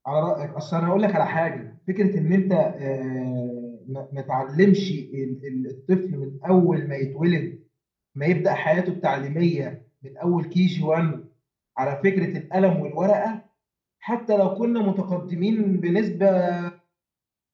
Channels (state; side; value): identical; both; correlation 1.00